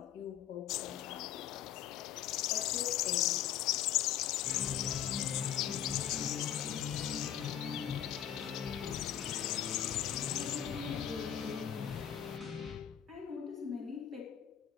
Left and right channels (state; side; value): quieter; right; 10.2 dB